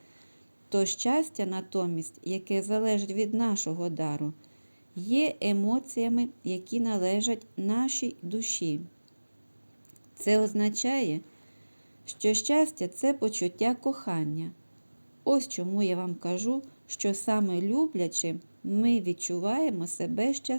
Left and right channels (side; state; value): both; inverted; correlation -1.00